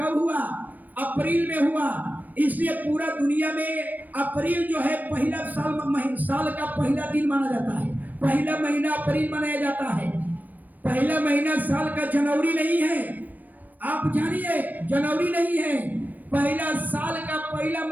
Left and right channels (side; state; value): left; late; 0.084 ms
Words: हुआ? अप्रैल में हुआ। इसलिए पूरा दुनिया में अप्रैल जो है पहला साल का पहला दिन माना जाता है। पहला महीना अप्रैल मनाया जाता है। पहला महीना साल का जनवरी नहीं है, आप जानिए, जनवरी नहीं है। पहला साल का पहला